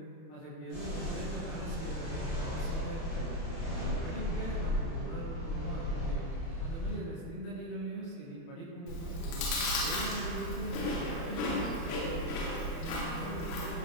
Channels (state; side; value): late; right; 30 ms